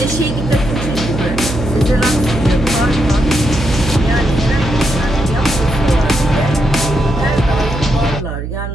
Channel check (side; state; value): right; noise; hum, 6 dB below the sound